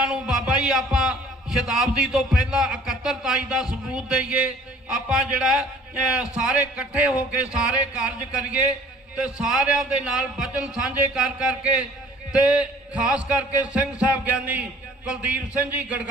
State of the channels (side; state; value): both; normal; correlation 0.53